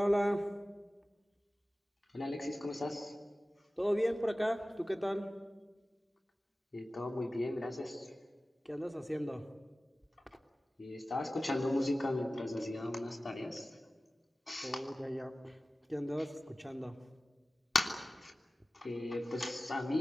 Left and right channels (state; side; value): normal; both; correlation 0.97